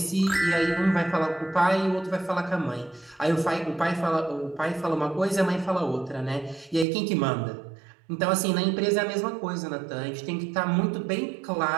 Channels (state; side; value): drops out; left; at 6.9 s